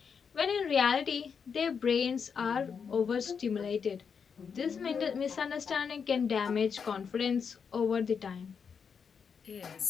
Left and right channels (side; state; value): right; quieter; 6.4 dB